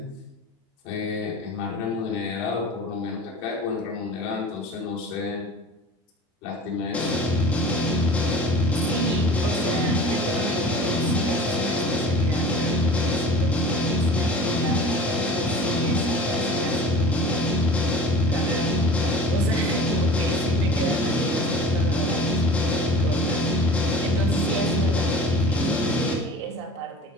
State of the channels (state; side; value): normal; both; correlation 0.39